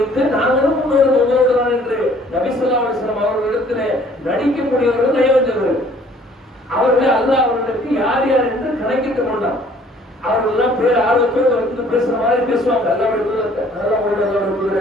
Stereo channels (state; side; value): normal; both; correlation 0.57